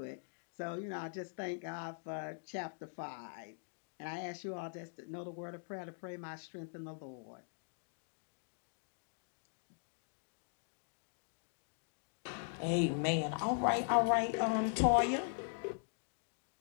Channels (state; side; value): silent; right; digital silence